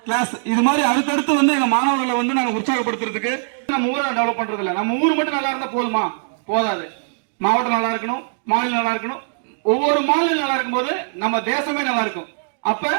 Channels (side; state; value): left; silent; digital silence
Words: கிளாஸ். இது மாதிரி அடுத்தடுத்து வந்து எங்க மாணவர்களை வந்து நாங்க உற்சாகப்படுத்துறதுக்கு நம்ம ஊரை டெவலப் பண்றது இல்ல. நம்ம ஊர் மட்டும் நல்லா இருந்தா போதுமா? போதாது. மாவட்டம் நல்லா இருக்கணும், மாநிலம் நல்லா இருக்கணும். ஒவ்வொரு மாநிலம் நல்லா இருக்கும் போது நம்ம தேசமே நல்லா இருக்கும். அப்ப